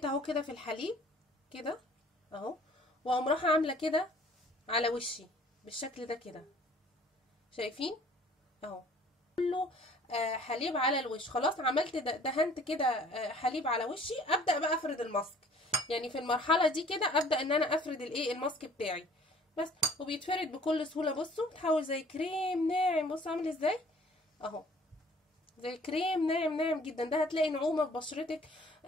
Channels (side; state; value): both; normal; correlation 0.54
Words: اهو كده في الحليب كده اهو، واقوم رايحه عامله كده على وشي بالشكل ده كده، شايفين اهو كله حليب على الوش. خلاص عملت دهنت كده حليب على وشي، ابدا بقى افرد الماسك. يعني في المرحله دي كده ابدا ان انا افرد الايه الماسك بتاعي بس، وبيتفرد بكل سهوله. بصوا بتحول زي كريم ناعم، بصوا عامل ازاي اهو، زي كريم ناعم ناعم جدا. ده هتلاقي نعومه في بشرتك